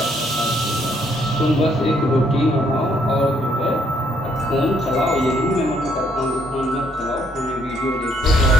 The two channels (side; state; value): both; normal; correlation 0.69